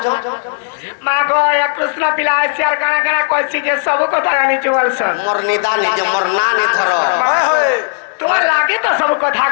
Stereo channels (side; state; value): right; silent; digital silence